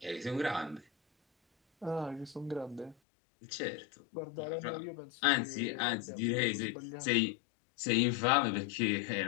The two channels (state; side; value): drops out; right; at 3.0 s